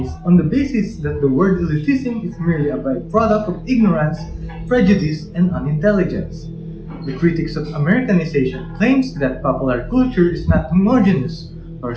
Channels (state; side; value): identical; both; correlation 1.00